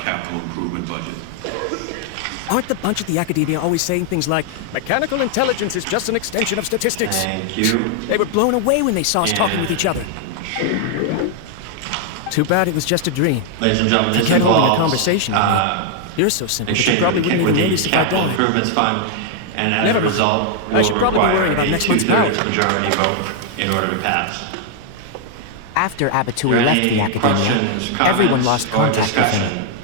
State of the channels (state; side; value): different; both; correlation 0.00